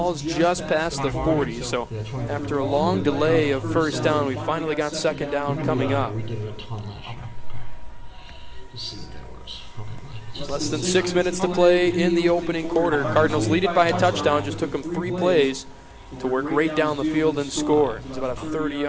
just past the 40, so after a long delay of first down, we finally got second down coming up. We did it a ton last year. Just see what that works. Okay. Less than 6 minutes to play in the opening quarter. Cardinals lead it by a touchdown. Just took them 3 plays to work right down the field and score. It's about a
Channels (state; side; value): identical; both; correlation 1.00